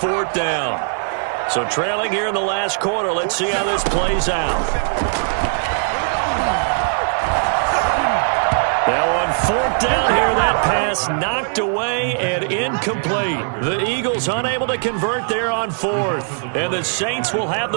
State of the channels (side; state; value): left; silent; digital silence